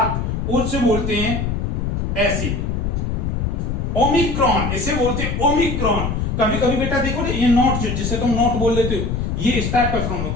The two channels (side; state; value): left; noise; rumble, 1 dB below the sound